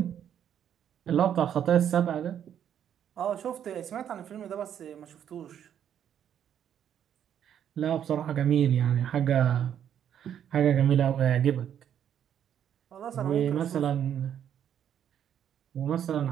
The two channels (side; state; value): left; quieter; 9.4 dB